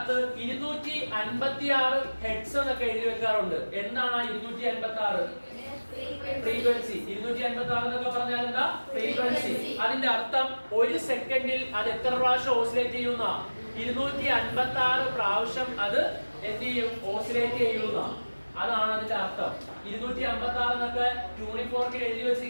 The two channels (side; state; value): both; inverted; correlation -1.00